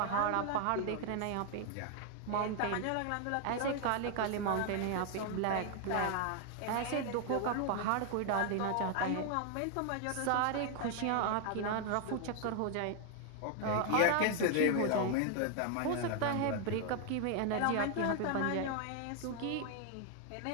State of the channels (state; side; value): different; both; correlation 0.00